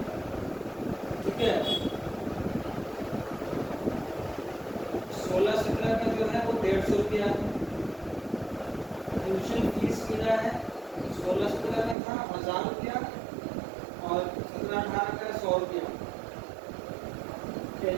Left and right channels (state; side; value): drops out; left; at 12.0 s